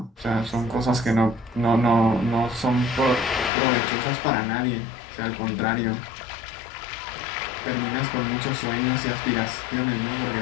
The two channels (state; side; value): drops out; right; at 3.5 s